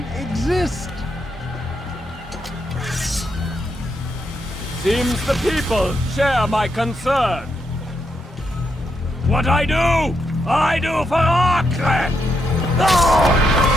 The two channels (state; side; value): normal; both; correlation 0.81